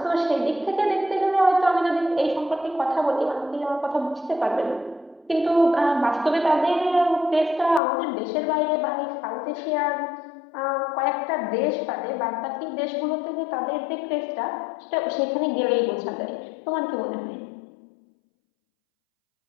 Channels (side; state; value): right; drops out; at 7.8 s